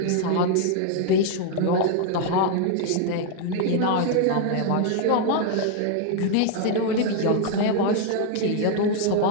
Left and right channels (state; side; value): different; both; correlation 0.00